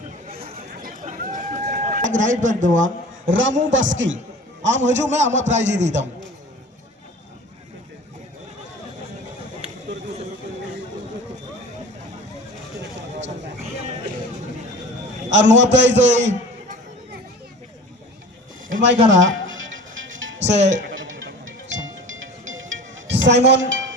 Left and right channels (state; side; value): normal; both; correlation 0.39